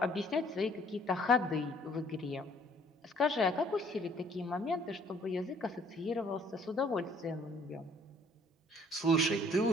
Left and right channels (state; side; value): normal; both; correlation 0.59